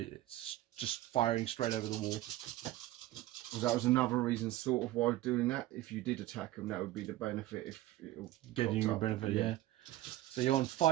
just firing straight over the wall. Well, that was another reason, sort of, why doing that. If you did attack them, that would be the benefit. If it'll getting you a benefit, yeah. So you're on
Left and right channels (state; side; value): quieter; left; 15.6 dB